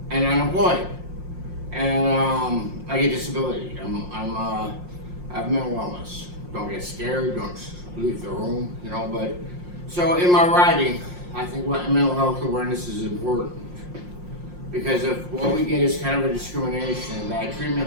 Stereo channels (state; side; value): late; left; 5.6 ms